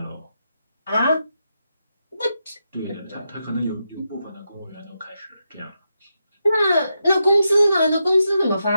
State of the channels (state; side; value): inverted; both; correlation -0.86